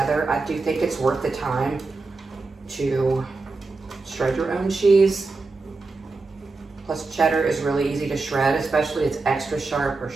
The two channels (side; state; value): left; quieter; 3.8 dB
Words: I do think it's worth the time to shred your own cheese. Plus cheddar is really easy to shred, especially it's extra sharp or